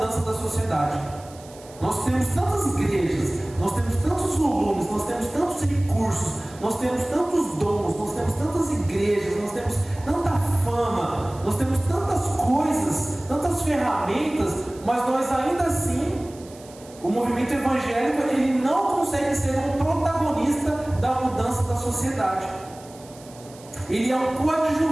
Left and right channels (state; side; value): noise; right; hiss, 22 dB below the sound